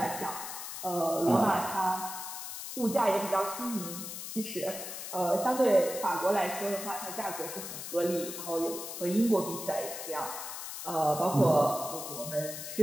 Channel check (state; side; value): noise; left; hiss, 8 dB below the sound